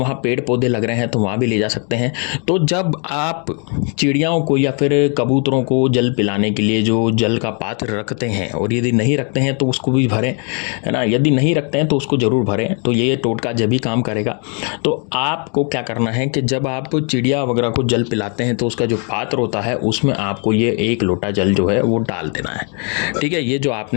पेड़ पौधे लग रहे हैं तो वहाँ भी ले जा सकते हैं। तो जब आप चिड़ियाओं को या फिर कबूतरों को जल पिलाने के लिए जो जल का पात्र रखते हैं, और यदि नहीं रखते हैं तो उसको भी भरें, है ना, यदि नहीं रखते हैं तो उसको जरूर भरें, तो ये टोटका जब भी काम करेगा। तो आपको क्या करना है कि जब आप चिड़िया वगैरह को जल पिलाते हैं तो उसका जो पात्र होता है उसमें आपको ये 1 लोटा जल जो है वो डाल देना है। ठीक है, ये जो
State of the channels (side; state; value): right; quieter; 37.9 dB